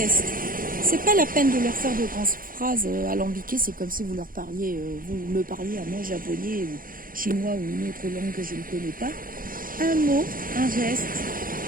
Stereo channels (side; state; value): left; late; 0.41 ms